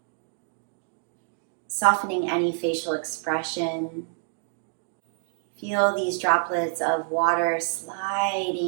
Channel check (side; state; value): left; silent; digital silence